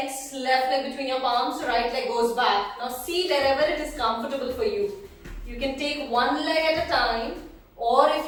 left leg between your palms, right leg goes back. Now see wherever it is comfortable for you. You can take one leg at a time, or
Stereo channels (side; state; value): both; identical; correlation 1.00